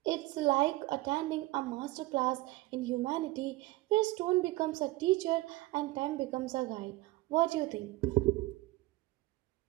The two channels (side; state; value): left; quieter; 19.7 dB